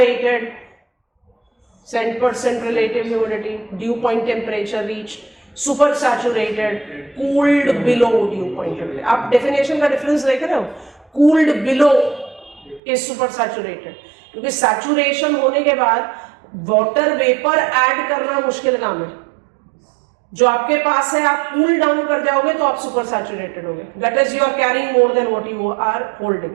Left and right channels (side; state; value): left; drops out; at 12.8 s